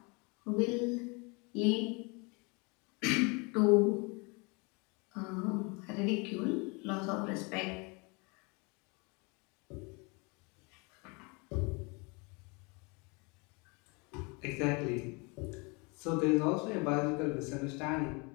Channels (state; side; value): quieter; right; 30.1 dB